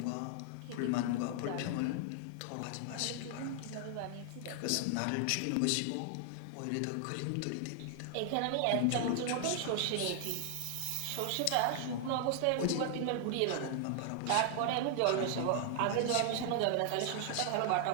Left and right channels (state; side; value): different; both; correlation 0.00